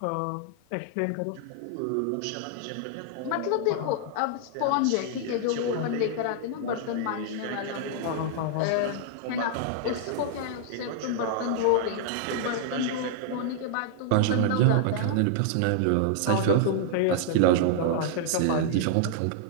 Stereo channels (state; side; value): different; both; correlation -0.01